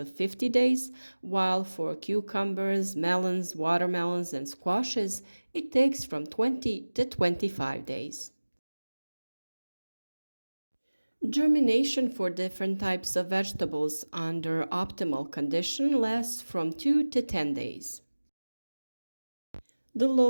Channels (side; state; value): both; inverted; correlation -1.00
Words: 50 days, while for cucumbers, melons, watermelons, and squashes, it takes from 20 to 25 days. Germination for different types of vegetables under optimal condition lasts from 2 to 10 days. The